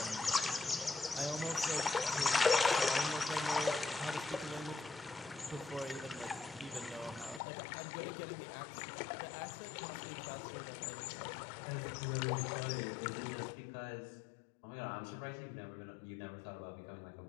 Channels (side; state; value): right; drops out; at 7.4 s